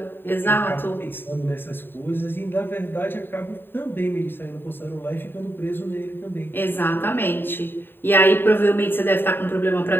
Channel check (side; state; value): right; late; 0.099 ms